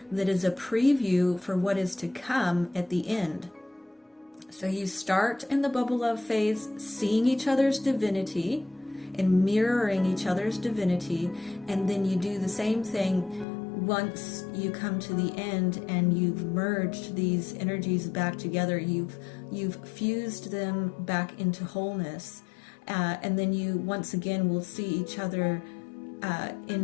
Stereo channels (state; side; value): drops out; right; at 13.5 s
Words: that is a preview for what is to come at the end. So you start in the bubble love phase seeing each other's divinity and mirroring each other's divinity, and then you do the same thing once you come to the end and you've merged these energies back together. You've fused them back into wholeness, and then you once again will see each other